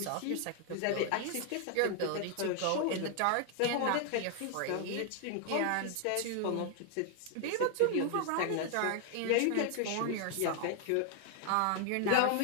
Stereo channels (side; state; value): both; different; correlation 0.00